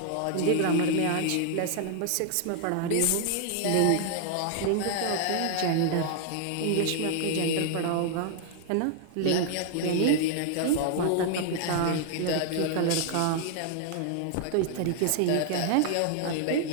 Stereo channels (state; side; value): different; both; correlation 0.00